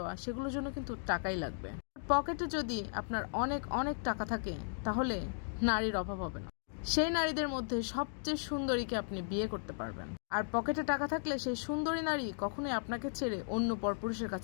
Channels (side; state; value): right; silent; digital silence